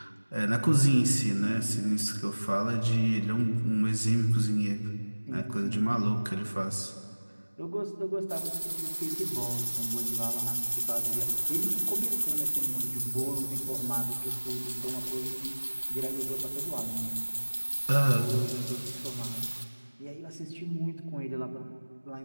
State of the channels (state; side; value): inverted; both; correlation -1.00